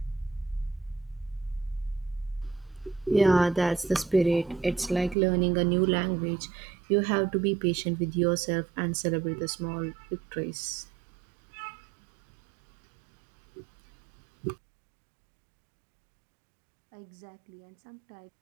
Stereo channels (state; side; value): drops out; left; at 5.2 s